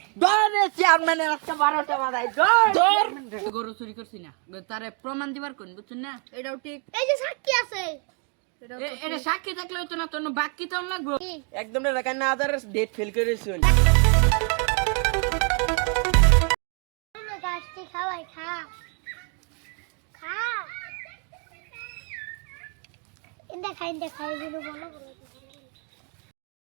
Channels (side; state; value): left; quieter; 37.1 dB